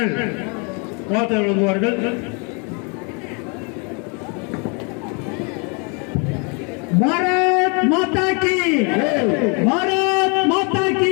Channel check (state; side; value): quieter; right; 34.2 dB